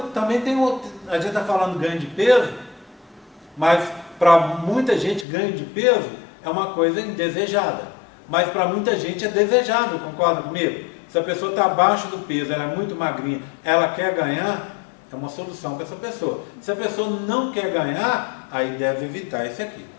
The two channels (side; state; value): right; drops out; at 5.2 s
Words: também tem outro, a gente está falando ganho de peso, mas para muita gente ganho de peso é uma coisa indesejada. Mas para muita gente é desejável, concorda comigo? Se a pessoa está abaixo do peso, ela é muito magrinha, ela quer ganhar, é uma solução para essa pessoa. Se a pessoa não quer ganhar, aí deve evitar esse aqui.